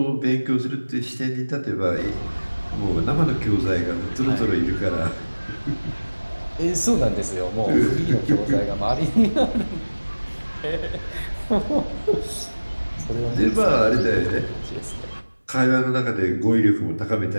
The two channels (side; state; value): both; inverted; correlation -1.00